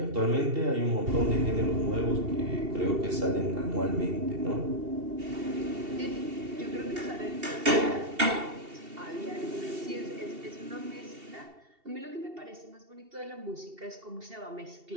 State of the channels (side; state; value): left; late; 2.7 ms